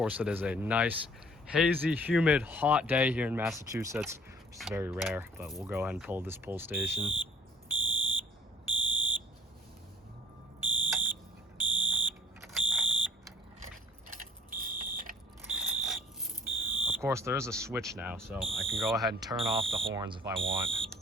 it is a nice, hazy, humid, hot day here in Massachusetts, which is very rare, but we'll go ahead and pull this pull station. Of course, there is a switch now, so I can go ahead and turn off the horns if I want.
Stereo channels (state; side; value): normal; both; correlation 0.53